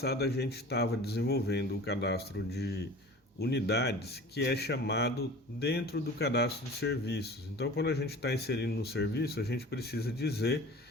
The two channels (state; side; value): normal; both; correlation 0.41